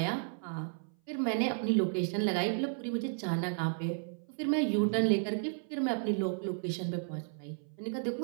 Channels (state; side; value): silent; left; 56 dB below the other